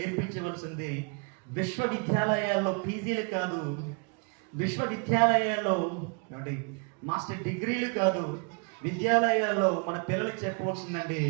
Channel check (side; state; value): left; quieter; 36.1 dB